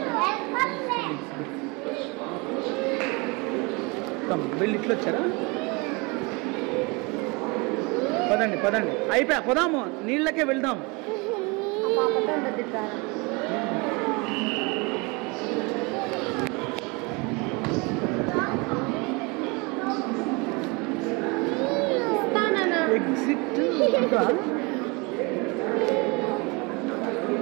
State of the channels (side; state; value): left; quieter; 28.0 dB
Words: వీళ్ళు ఇట్లా వచ్చారా? పదండి అయిపోయా. పోదాము, నీళ్ళకే వెళ్దాం.